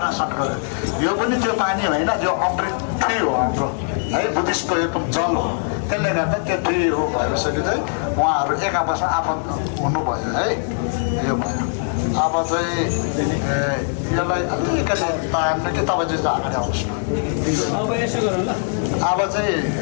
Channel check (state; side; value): silent; right; 65 dB below the other